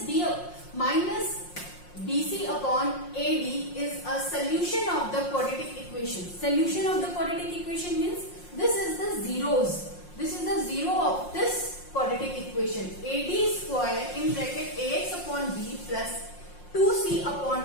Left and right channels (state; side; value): late; right; 5.6 ms